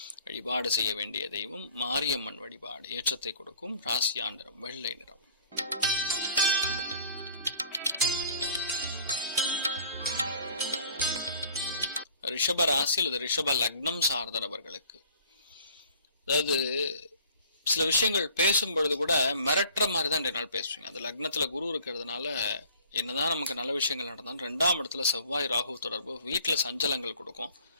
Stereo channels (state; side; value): inverted; both; correlation -0.52